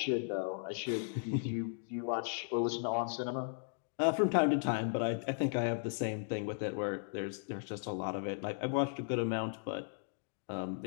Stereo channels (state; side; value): silent; right; digital silence